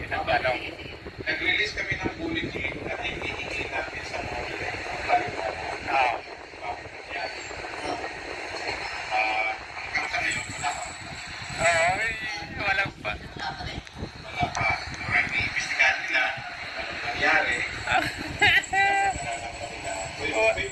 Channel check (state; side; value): identical; both; correlation 1.00